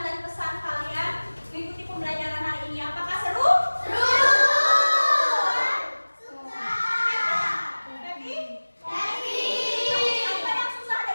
pesan kalian mengikuti pembelajaran hari ini. Apakah seru? Happy? Apa yang susah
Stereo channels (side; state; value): both; inverted; correlation -1.00